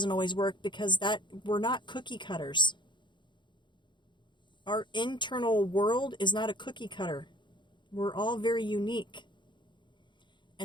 always work because we're not cookie cutters. Our internal world is not a cookie cutter. We're all very unique.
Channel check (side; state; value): right; late; 0.23 ms